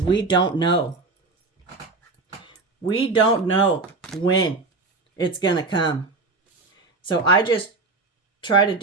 we don't know. We don't know when it's going to come. So I just try to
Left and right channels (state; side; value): quieter; left; 3.7 dB